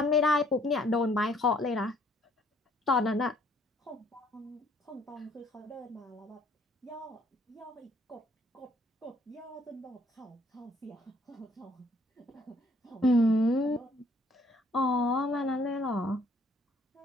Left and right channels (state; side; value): normal; both; correlation 0.63